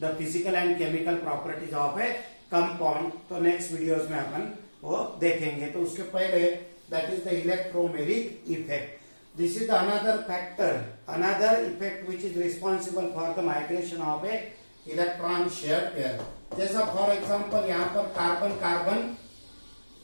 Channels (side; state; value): both; inverted; correlation -1.00